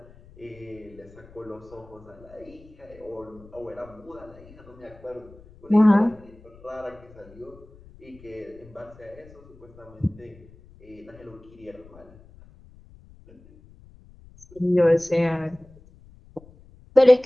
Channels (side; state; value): left; noise; rumble, 23 dB below the sound